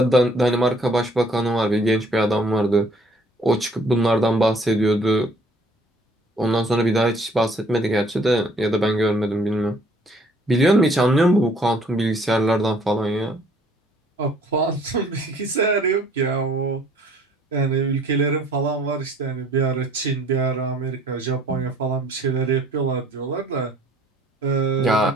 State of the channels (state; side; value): normal; both; correlation 0.59